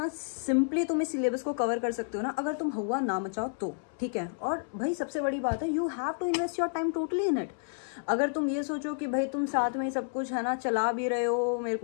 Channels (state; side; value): silent; right; 58 dB below the other